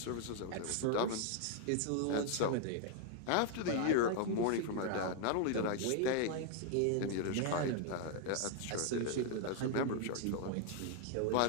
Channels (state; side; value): different; both; correlation 0.00